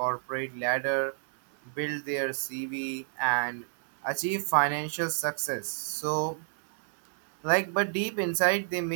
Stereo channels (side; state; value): left; silent; 58 dB below the other